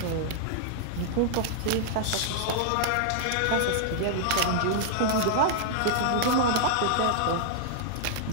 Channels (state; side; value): different; both; correlation -0.01